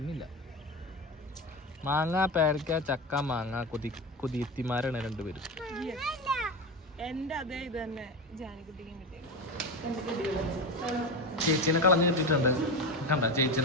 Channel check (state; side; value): normal; both; correlation 0.21